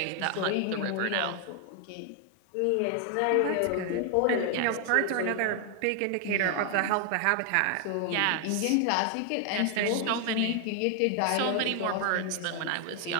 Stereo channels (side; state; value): both; different; correlation 0.00